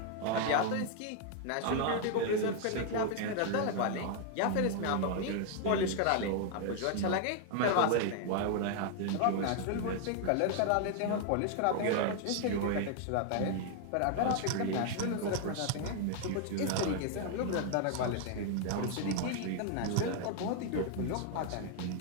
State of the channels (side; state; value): both; different; correlation 0.00